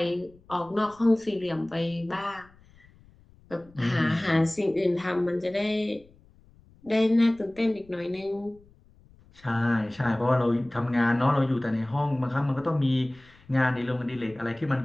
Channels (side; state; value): left; noise; rumble, 28 dB below the sound